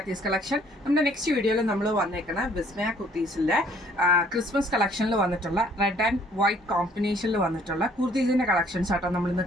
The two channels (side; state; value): both; normal; correlation 0.60